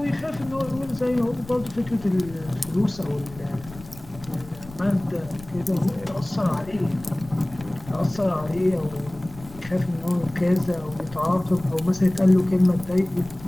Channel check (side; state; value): left; noise; rumble, 18 dB below the sound